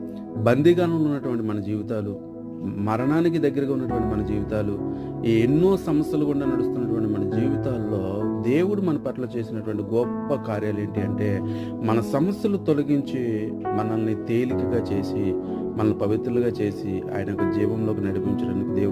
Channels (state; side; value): identical; both; correlation 1.00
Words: బందీగానంలో ఉన్నటువంటి మన జీవితాలు, మరణానికి దగ్గరగా ఉన్నటువంటి మన జీవితాలు, ఈ ఎన్నో సమస్యలు గుండా నడుస్తున్నటువంటి మన జీవితాల్లో దేవుడు మన పట్ల చేసినటువంటి గొప్ప కార్యాలు ఏంటి అంటే, మన సమస్యలు తొలగించి మనల్ని తేలికగా చేసి, మనల్ని పవిత్రులుగా చేసి ఆయన యొక్క జీవంలోకి నడిపించడానికి